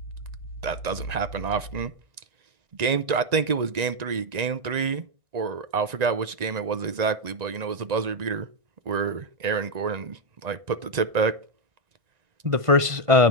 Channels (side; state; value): left; late; 1.9 ms